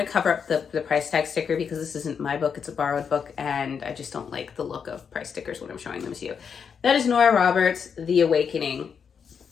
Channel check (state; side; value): quieter; right; 6.7 dB